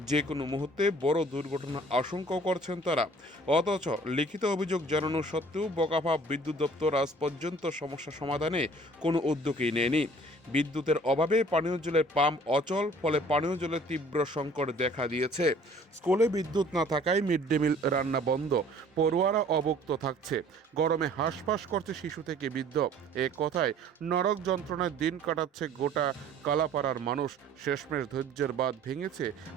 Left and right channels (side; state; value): both; normal; correlation 0.52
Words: যে কোনো মুহূর্তে বড় দুর্ঘটনা আশঙ্কা করছেন তারা। অথচ লিখিত অভিযোগ জানানো সত্ত্বেও বগাফা বিদ্যুৎ দপ্তর আজ পর্যন্ত সমস্যা সমাধানে কোনো উদ্যোগই নেয়নি। বিদ্যুতের অভাবে পানীয় জলের পাম্প অচল, ফলে পানীয় জলের তীব্র সংকট দেখা দিয়েছে। স্কুলে বিদ্যুৎ না থাকায় মিড ডে মিল রান্না বন্ধ, পড়ুয়ারা অবক্ত থাকছে, গরমে হাঁসফাঁস করছে শিশু থেকে বৃদ্ধ। এক কথায় নরক যন্ত্রণায় দিন কাটাচ্ছে গোটা কালাপাড়ার মানুষ। শেষমেশ ধৈর্যের বাঁধ ভেঙেছে